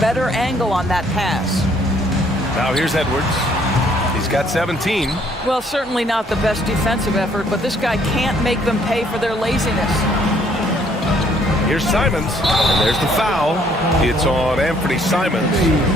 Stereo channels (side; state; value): both; normal; correlation 0.64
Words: angle on that pass. Now here's Edwards. He's got 17. Well, certainly not the best defensive effort, but this guy can't make them pay for their laziness. Here's Simons, and there's the foul. It's on Anthony Simons.